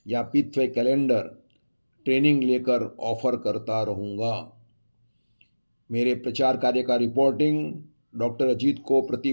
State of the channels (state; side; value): inverted; both; correlation -1.00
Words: या पितृवाई कैलेंडर ट्रेनिंग लेकर ऑफर करता रहूँगा। मेरे प्रचार कार्य का रिपोर्टिंग डॉक्टर अजीत को प्रति